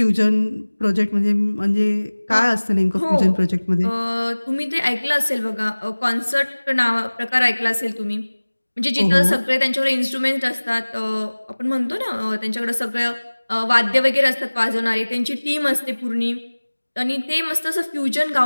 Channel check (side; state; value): both; inverted; correlation -1.00